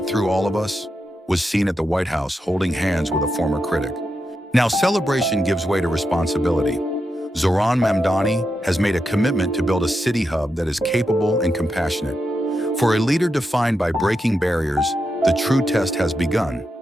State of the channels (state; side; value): normal; both; correlation 0.86